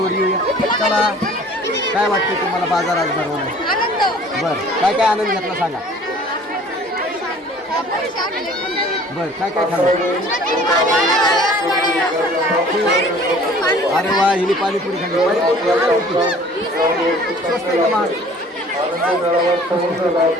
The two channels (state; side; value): normal; both; correlation 0.50